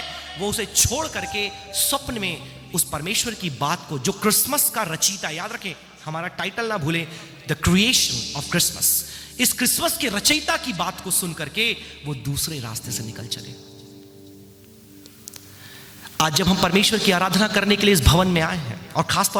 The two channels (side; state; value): both; identical; correlation 1.00